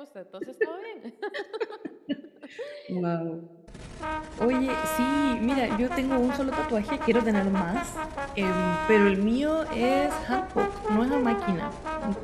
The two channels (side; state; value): both; identical; correlation 1.00